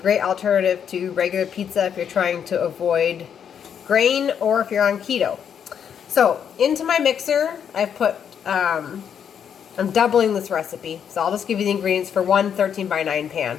alternative to regular pizza if you're trying to avoid grain or if you're on keto. So into my mixer I've put, I'm doubling this recipe, so I'll just give you the ingredients for one 13 by 9 pan.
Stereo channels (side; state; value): right; quieter; 8.1 dB